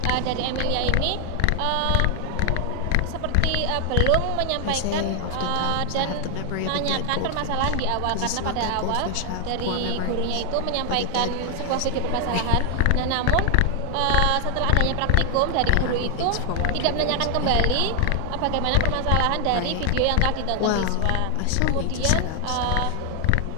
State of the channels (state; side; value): different; both; correlation 0.00